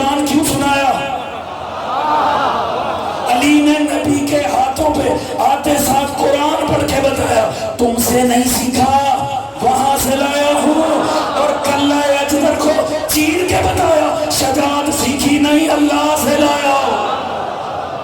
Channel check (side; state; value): both; identical; correlation 1.00